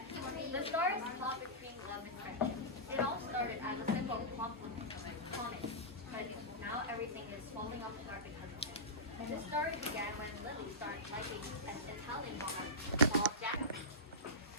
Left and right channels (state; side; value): normal; both; correlation -0.15